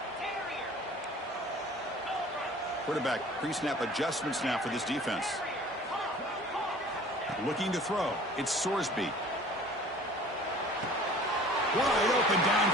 Quarterback pre-snap adjustments now for this defense. Looking to throw. It's Sorsby. Wide open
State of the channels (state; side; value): normal; both; correlation 0.47